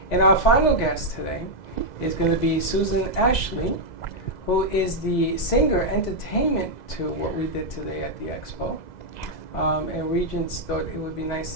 our final guest today is going to be Susan Ashley, who is the singer entertainment to what we did today at the expo. And Regents thought it would be nice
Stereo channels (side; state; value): right; late; 2.0 ms